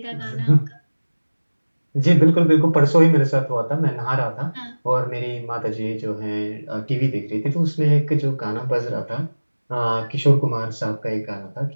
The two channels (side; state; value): both; inverted; correlation -1.00